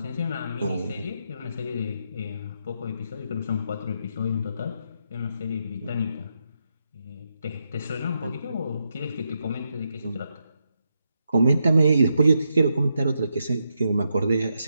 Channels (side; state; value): both; inverted; correlation -0.83